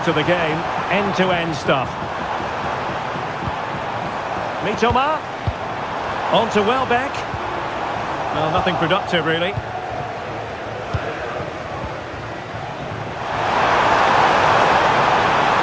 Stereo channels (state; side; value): identical; both; correlation 1.00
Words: to the game. End-to-end stuff. Mitoma. On to Welbeck. Well, nothing productive, really. Nice